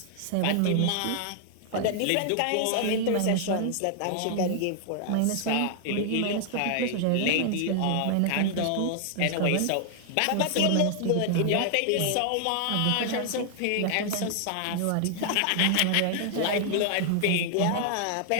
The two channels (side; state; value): both; different; correlation 0.00